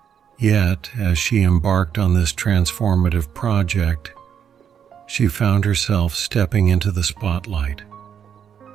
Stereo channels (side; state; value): left; quieter; 8.2 dB